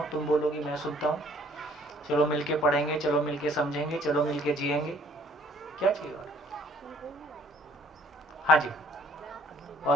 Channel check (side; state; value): both; normal; correlation 0.59